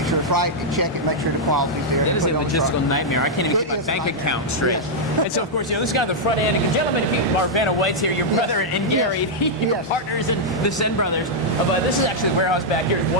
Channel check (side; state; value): both; normal; correlation -0.05